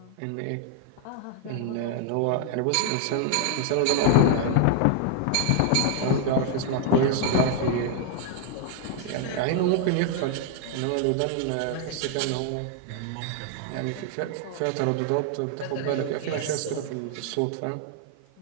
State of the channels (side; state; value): both; different; correlation 0.00